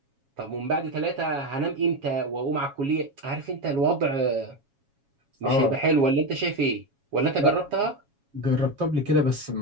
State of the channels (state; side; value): late; left; 7.2 ms